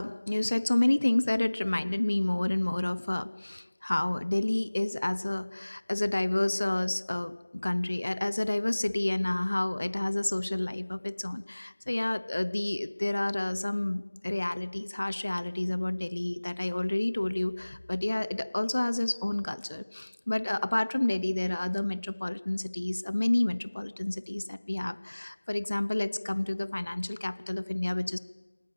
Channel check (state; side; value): inverted; both; correlation -1.00